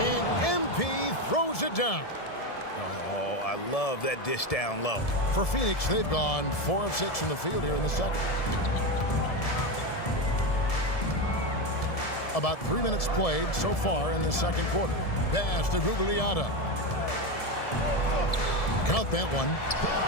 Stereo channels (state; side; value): late; right; 1.7 ms